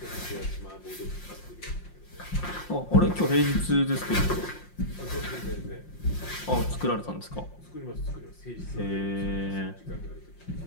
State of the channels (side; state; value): right; late; 5.7 ms